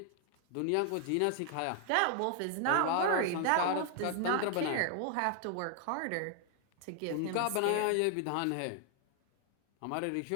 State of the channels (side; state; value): both; different; correlation 0.00